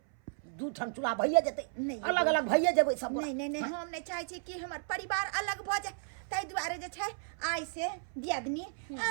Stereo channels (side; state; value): left; silent; 55 dB below the other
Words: दू ठन चूल्हा भइए जेतै, अलग अलग भइए जेबै सब गोटा। नहीं हम नहीं चाहे छी कि हमर परिवार अलग भ जाए। ताहि दुआरे जे छै आइ से दियादनी